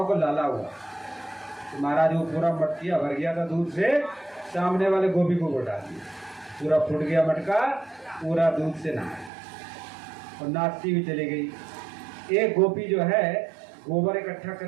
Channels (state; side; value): drops out; left; at 9.3 s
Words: को लाला हुआ। तो महाराज वो पूरा मटकिया भर गया था दूध से, सामने वाले गोपी को घोटा दिया, पूरा फूट गया मटका, पूरा दूध से नहा और नाचती हुई चली गई। एक गोपी जो है गोबर इकट्ठा कर